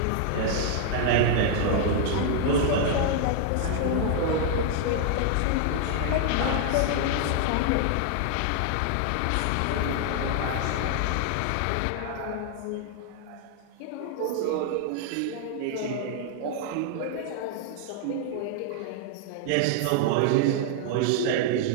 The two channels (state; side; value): different; both; correlation 0.00